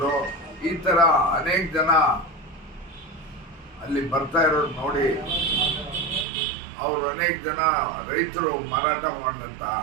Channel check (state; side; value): drops out; left; at 6.2 s